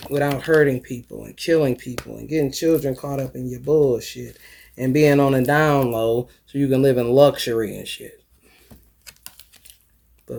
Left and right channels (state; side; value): identical; both; correlation 1.00